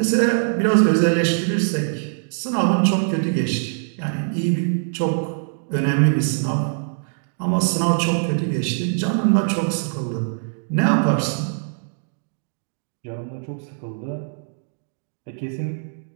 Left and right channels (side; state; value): left; silent; digital silence